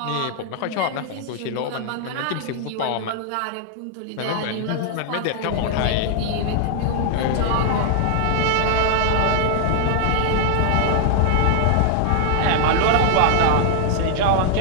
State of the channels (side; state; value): both; different; correlation 0.00